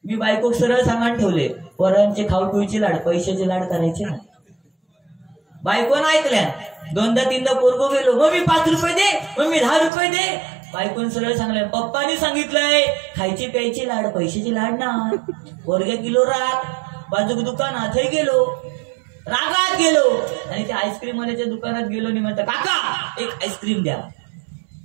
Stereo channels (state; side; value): drops out; left; at 9.9 s